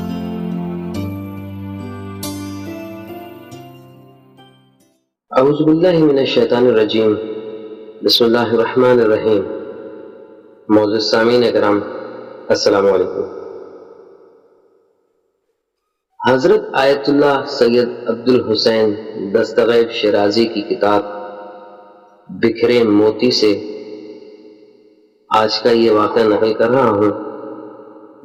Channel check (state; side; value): identical; both; correlation 1.00